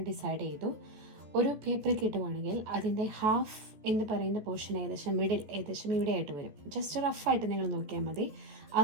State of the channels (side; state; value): left; late; 14 ms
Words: ഡിസൈഡ് ചെയ്തു. ഒരു പേപ്പർ കിട്ടുവാണെങ്കിൽ അതിൻ്റെ ഹാഫ് എന്ന് പറയുന്ന പോർഷൻ ഏകദേശം മിഡിൽ ഏകദേശം ഇവിടെ ആയിട്ട് വരും. ജസ്റ്റ് റഫായിട്ട് നിങ്ങൾ നോക്കിയാൽ മതി.